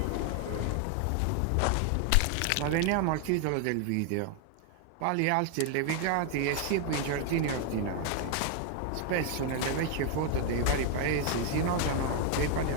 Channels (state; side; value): different; both; correlation 0.00